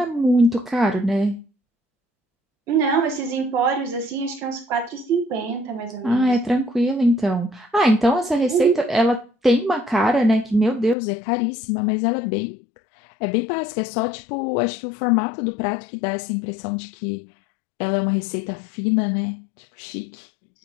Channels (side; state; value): right; drops out; at 11.0 s